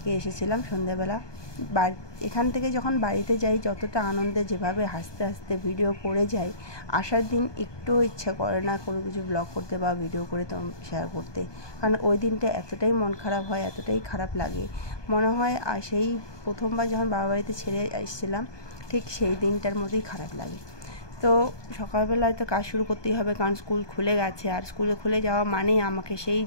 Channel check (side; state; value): right; late; 1.2 ms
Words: এসেছিলাম সন্ধ্যাবেলা। এখান থেকে যখন বাড়িতে যাই, যতটা আনন্দে, যেভাবে হাসতে হাসতে ভিডিও করে যাই, আসার দিন একটুও ইচ্ছা করে না কোনো কিছু ব্লগ করতে বা ভিডিও করে তো শেয়ার করতে। কারণ ওই দিনটা এতটাই মন খারাপ হয়, এতটাই খারাপ লাগে, মনে হয় আর সেই প্রথমবার যখন বাবা বাড়িতে ছেড়ে এসেছিলাম ঠিক সেই দিনটার মধ্যেই খারাপ লাগে। তো সকালবেলায় তো কাজ শুরু করতেই হবে, কারণ স্কুল খুলে গেছে। আর স্কুলে খুলে যাওয়া মানেই আমাকে সেই